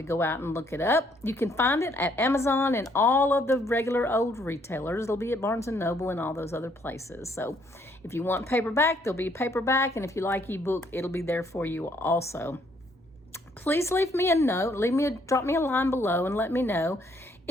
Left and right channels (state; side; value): normal; both; correlation 0.67